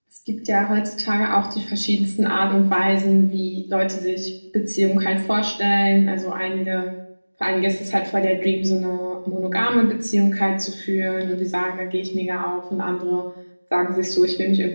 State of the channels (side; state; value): both; inverted; correlation -1.00